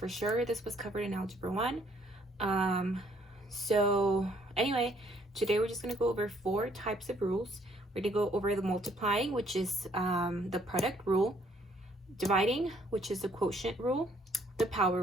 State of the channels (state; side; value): normal; both; correlation 0.65